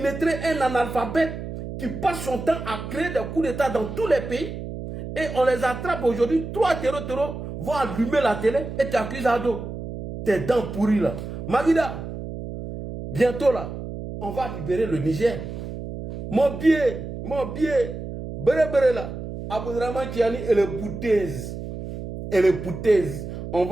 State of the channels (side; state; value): right; noise; hum, 8 dB below the sound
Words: un analphabète, qui passe son temps à créer des coups d'État dans tous les pays, et on les attrape aujourd'hui, 3 terreaux vont allumer la télé et t'accuses à dos. Tes dents pourries là. Magida, bientôt là, on va libérer le Niger. Mon billet, béré là, Abdraman Tiani et les boutaises. On